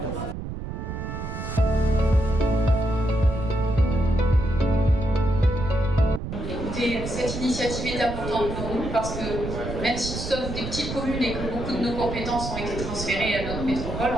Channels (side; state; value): right; noise; rumble, 6 dB below the sound